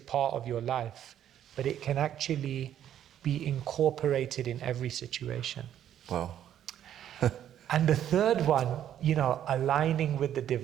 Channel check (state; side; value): quieter; left; 10.6 dB